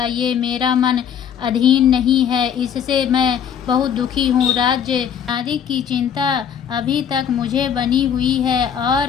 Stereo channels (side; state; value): right; quieter; 8.3 dB